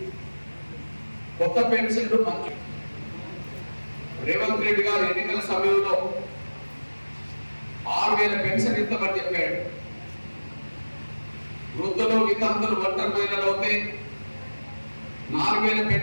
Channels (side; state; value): both; inverted; correlation -1.00